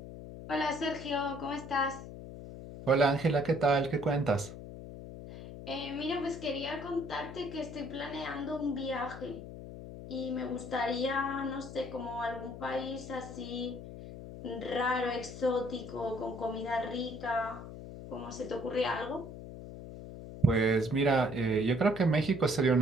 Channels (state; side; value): noise; left; hum, 12 dB below the sound